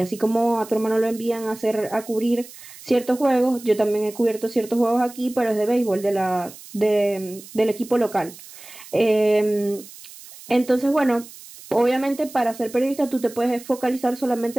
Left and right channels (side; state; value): right; noise; hiss, 18 dB below the sound